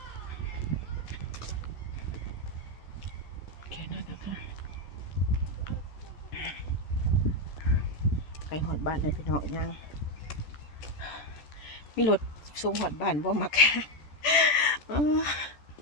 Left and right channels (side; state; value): right; late; 14 ms